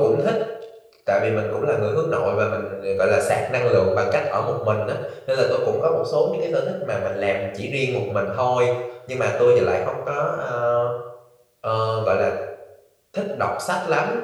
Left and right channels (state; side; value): identical; both; correlation 1.00